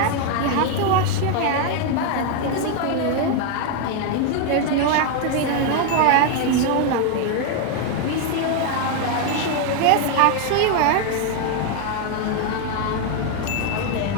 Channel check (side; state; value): both; different; correlation 0.01